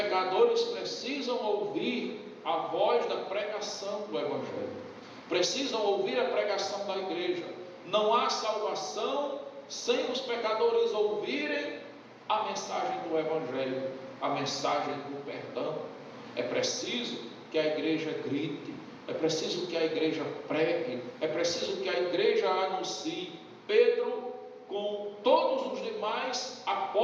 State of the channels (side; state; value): both; identical; correlation 1.00